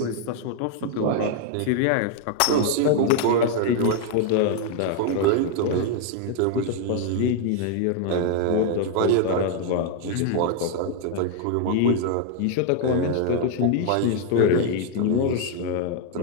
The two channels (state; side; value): different; both; correlation 0.00